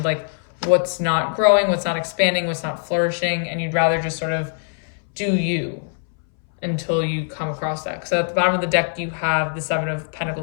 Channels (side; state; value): right; silent; 62 dB below the other